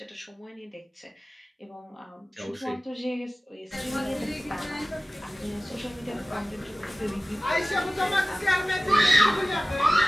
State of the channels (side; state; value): both; normal; correlation 0.96